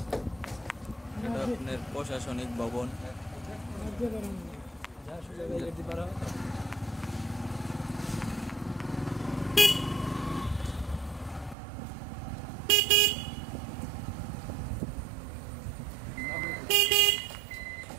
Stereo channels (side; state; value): left; drops out; at 11.6 s